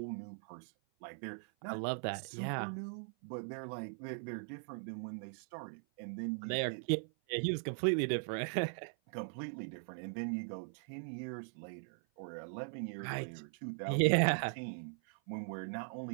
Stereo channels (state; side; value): silent; left; 51 dB below the other